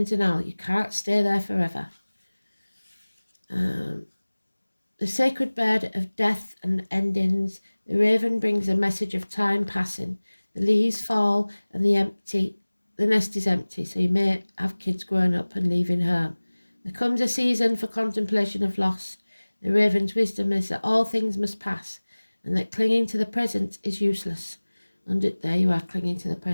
denial. You can't stay there forever. The sacred bird of death and endings, the raven brings a message of time passing. The leaves fall and the nest is empty, so you may have kids growing up and leaving home. There comes a season for contemplation of loss. The raven's wisdom is that all things must pass, and that clinging to the present is useless. And there you are, clinging to the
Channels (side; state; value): both; inverted; correlation -1.00